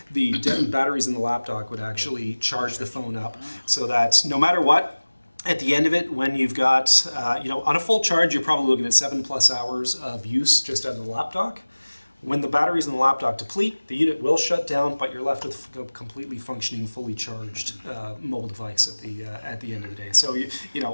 the batteries in the lap dock would actually charge the phone up, so that no matter what, at the end of it, when you've got, on a full charge, you're probably looking at 7+ hours of use just out of the lap dock. When the batteries in the lap dock deplete, the unit will shut down, but you're left with a completely functioning, fully charged mobile device at the end of the day. So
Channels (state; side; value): inverted; both; correlation -1.00